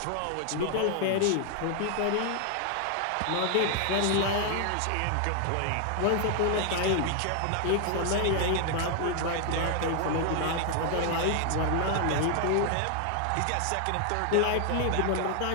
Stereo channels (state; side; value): different; both; correlation 0.00